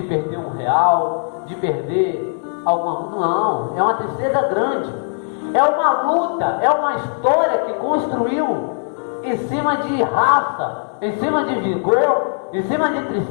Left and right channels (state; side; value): silent; right; digital silence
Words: perder R$1, de perder alguma... Não, é uma tristeza grande. É uma luta, é uma história que construiu em cima de raça, em cima de vigor, em cima de